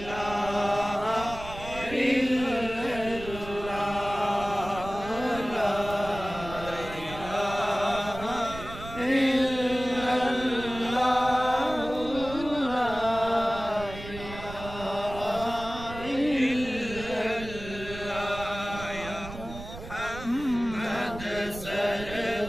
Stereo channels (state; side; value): noise; right; rumble, 12 dB below the sound